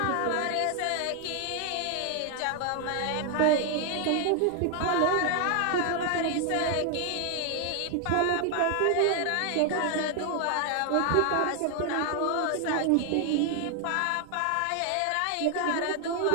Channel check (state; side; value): different; both; correlation 0.00